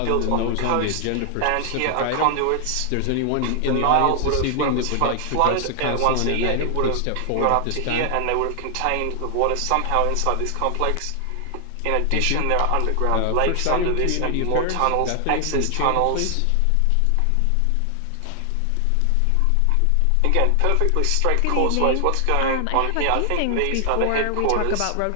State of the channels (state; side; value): different; both; correlation 0.00